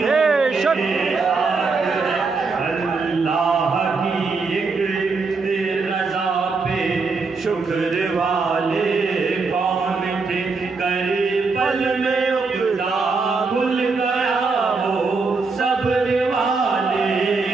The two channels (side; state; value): left; quieter; 4.3 dB